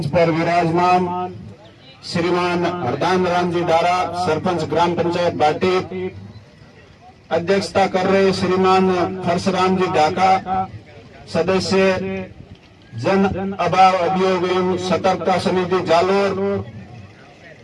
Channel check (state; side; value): identical; both; correlation 1.00